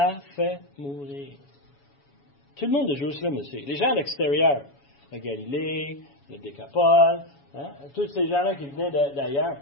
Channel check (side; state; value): right; late; 7.1 ms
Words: faire mourir? » Tout le monde de Jérusalem le sait. Les gens à l'extérieur, la Galilée, le Décapole, tous ces gens-là qui venaient d'ailleurs,